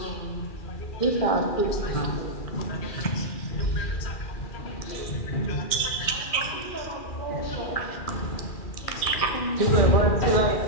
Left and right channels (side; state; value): right; late; 2.4 ms